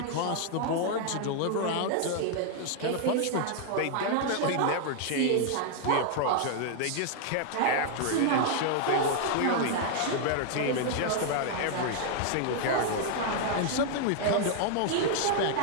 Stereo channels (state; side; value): different; both; correlation 0.00